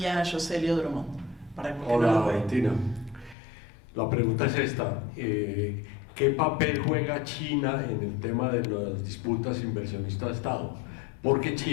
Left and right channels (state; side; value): drops out; right; at 3.4 s